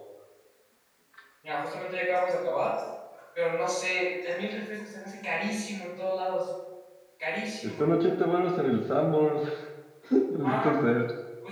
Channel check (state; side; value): identical; both; correlation 1.00